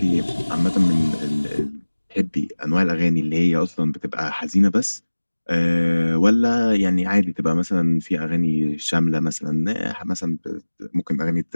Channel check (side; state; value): both; inverted; correlation -1.00